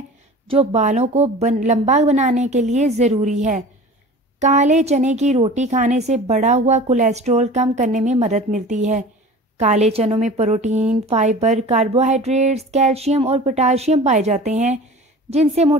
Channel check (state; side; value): normal; both; correlation 0.39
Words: जो बालों को लंबा बनाने के लिए ज़रूरी है। काले चने की रोटी खाने से बढ़ा हुआ कोलेस्ट्रॉल कम करने में मदद मिलती है। काले चनों में प्रोटीन, फाइबर, कार्बोहाइड्रेट्स, कैल्शियम और पोटाशियम पाए जाते हैं जिनसे